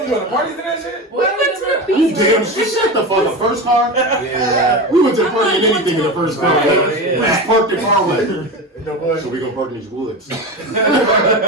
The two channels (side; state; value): both; normal; correlation 0.23